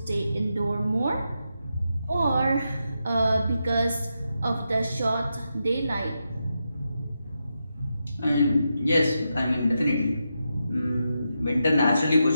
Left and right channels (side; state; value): both; inverted; correlation -0.86